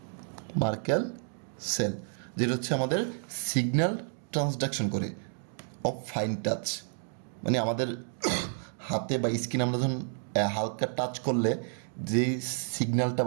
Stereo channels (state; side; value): silent; left; 57 dB below the other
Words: সেল, যেটা হচ্ছে আমাদের সিগন্যাল ট্রান্সডাকশন করে অফ ফাইন টাচ। মানে আমাদের হাতে বা স্কিন আমরা যখন হালকা টাচ করলে যে সিগন্যালটা